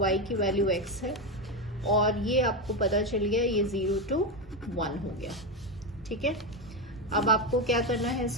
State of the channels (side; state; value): both; normal; correlation 0.11